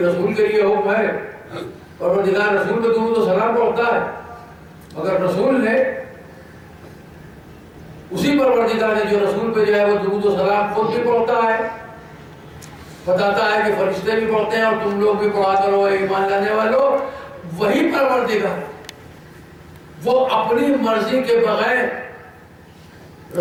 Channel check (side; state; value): both; identical; correlation 1.00